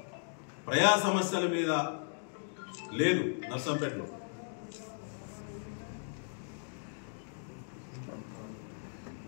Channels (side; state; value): right; silent; digital silence